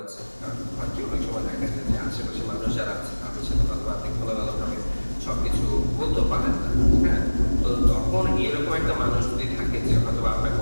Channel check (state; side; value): inverted; both; correlation -1.00